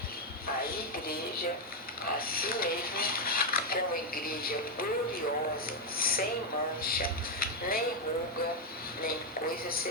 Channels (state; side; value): normal; both; correlation 0.03